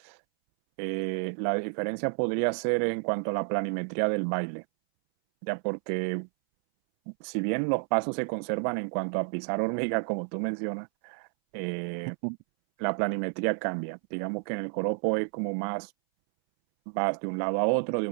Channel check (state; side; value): silent; left; 58 dB below the other